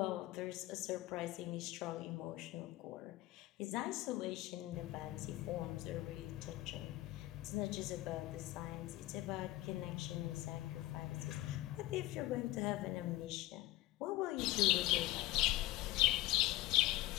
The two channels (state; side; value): quieter; right; 17.6 dB